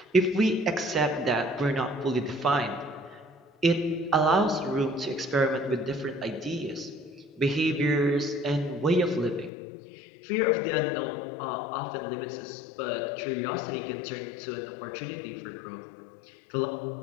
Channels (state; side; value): drops out; right; at 9.5 s